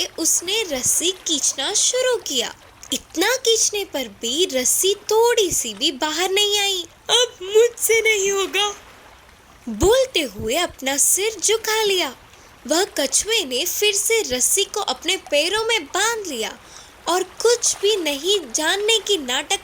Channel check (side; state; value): both; identical; correlation 1.00